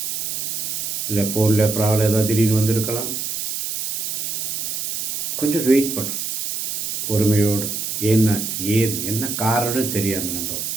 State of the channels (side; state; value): right; noise; hiss, 3 dB below the sound